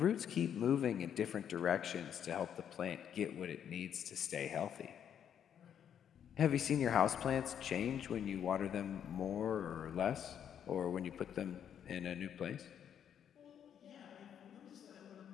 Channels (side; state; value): right; quieter; 8.9 dB